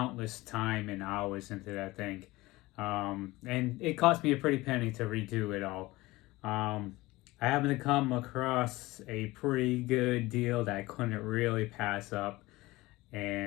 time and hours into that thing, and it cost me a pretty penny to redo it all. I happened to come across a pretty good deal that I couldn't really pass up.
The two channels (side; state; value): right; quieter; 19.9 dB